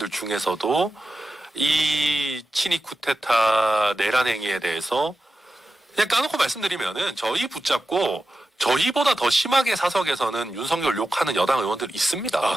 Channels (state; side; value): normal; both; correlation 0.91